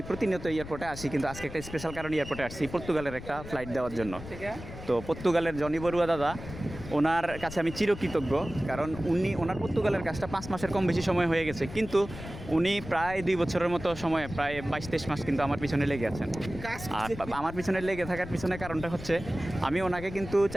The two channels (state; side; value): noise; left; rumble, 12 dB below the sound